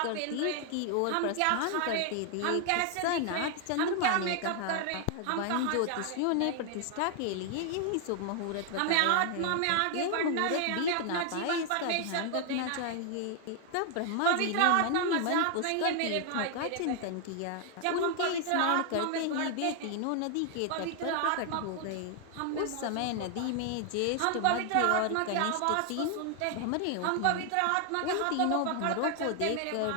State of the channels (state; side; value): different; both; correlation 0.00